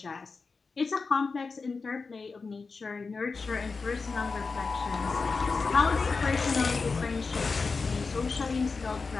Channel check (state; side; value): quieter; right; 4.5 dB